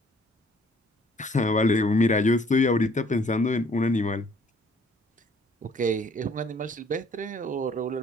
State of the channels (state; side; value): normal; both; correlation 0.59